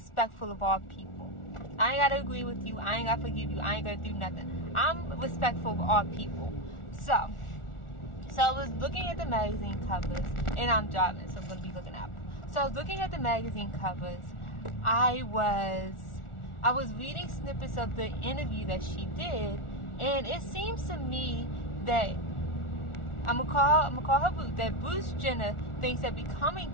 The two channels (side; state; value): right; late; 1.4 ms